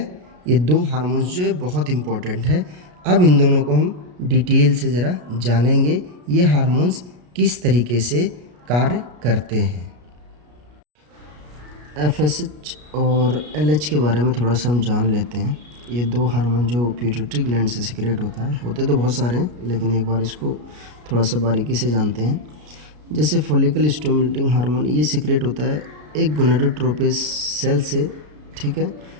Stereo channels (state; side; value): late; left; 33 ms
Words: ये 2 हार्मोन्स जो है बहुत इम्पोर्टेंट है। अब इन दोनों को हम डिटेल से ज़रा जानेंगे, ये हार्मोन्स किस तरीके से कार्य करते हैं। FSH और LH के बारे में थोड़ा सा हम जान लेते हैं। ये 2 हार्मोन जो पिट्यूटरी ग्लैंड से सिक्रेट होता है, होते तो बहुत सारे हैं लेकिन एक बार इसको थोड़ा सा बारीकी से जानते हैं। जैसे फॉलिकल स्टिमुलेटिंग हार्मोन ये सिक्रेट होता है एक गोनाडोट्रोपिक सेल से। ठीक है,